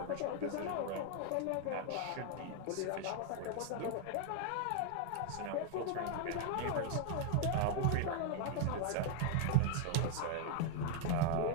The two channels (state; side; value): different; both; correlation 0.00